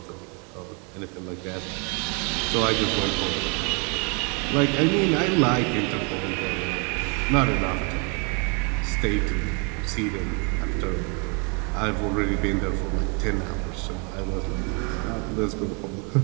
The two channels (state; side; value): quieter; left; 34.3 dB